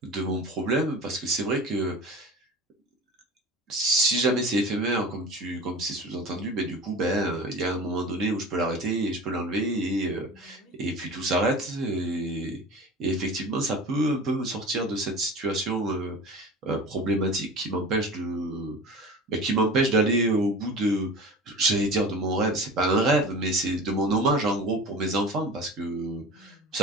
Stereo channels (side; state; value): both; normal; correlation 0.36